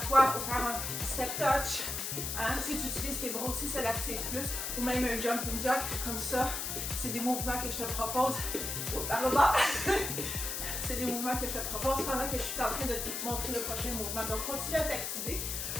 pour faire un step touch. Hein? Si tu utilises tes bras aussi, ça l'active plus. Ou même un jumping jack comme ça. C'est des mouvements que je te propose. Par le bas. C'est des mouvements que je te propose pendant que je suis en train de te montrer le prochain mouvement. Donc, continue à t'activer.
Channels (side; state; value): left; noise; hiss, 3 dB below the sound